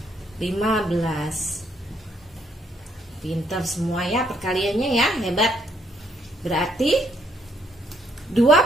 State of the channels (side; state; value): both; normal; correlation 0.71